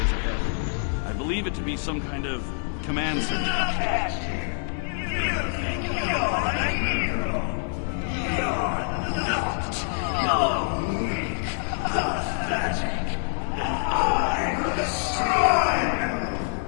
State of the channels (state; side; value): silent; right; 61 dB below the other